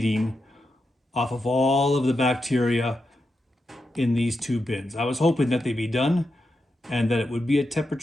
off of all of the bacteria in these two bins. I was hoping that they'd be done and that it would be a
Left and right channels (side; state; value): both; normal; correlation 0.87